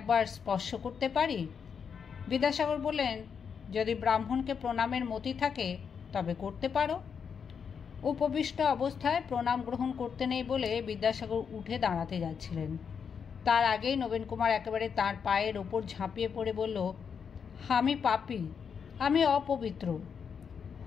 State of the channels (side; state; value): right; quieter; 6.7 dB